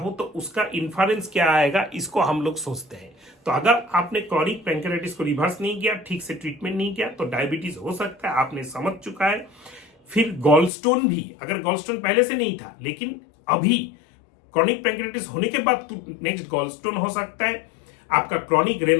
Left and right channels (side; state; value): right; drops out; at 10.7 s